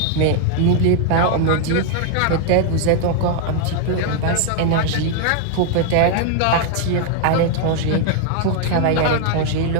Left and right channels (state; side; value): different; both; correlation 0.00